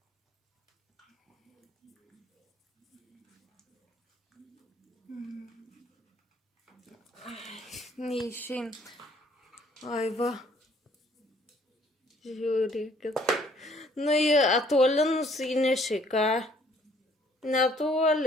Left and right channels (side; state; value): both; normal; correlation 0.61